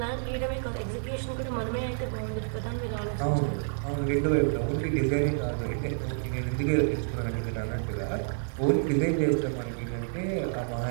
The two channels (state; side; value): silent; left; digital silence